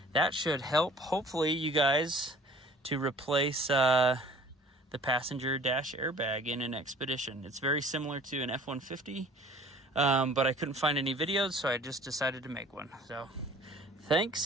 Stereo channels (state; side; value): normal; both; correlation 0.50